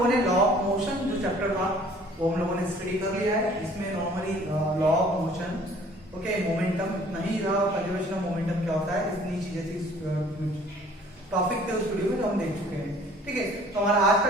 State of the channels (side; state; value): both; normal; correlation 0.54